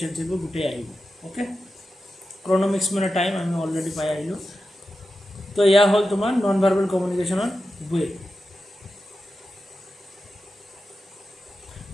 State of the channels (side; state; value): both; normal; correlation 0.91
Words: এইবোৰ গোটেই আহিব, অ'কে। ক্ৰনমিক্স মানে টাইম, আমি অলৰেডি পাই আহিলোঁ। তো এয়া হ'ল তোমাৰ নন ভাৰ্বেল কমিউনিকেশ্যনৰ ৱে।